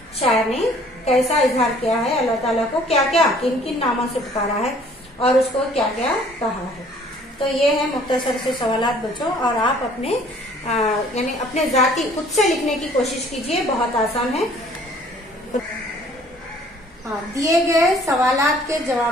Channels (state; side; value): normal; both; correlation 0.56